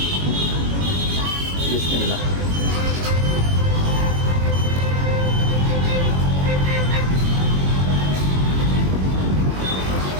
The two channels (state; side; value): late; left; 21 ms